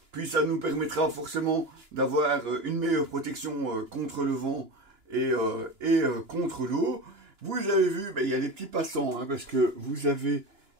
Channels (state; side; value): late; left; 2.9 ms